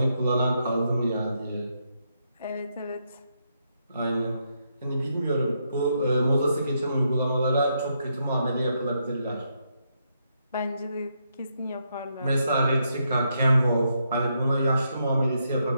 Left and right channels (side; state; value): both; inverted; correlation -0.79